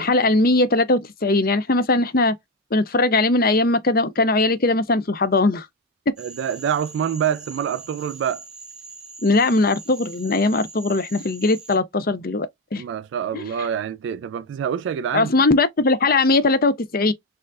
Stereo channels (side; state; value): both; normal; correlation 0.12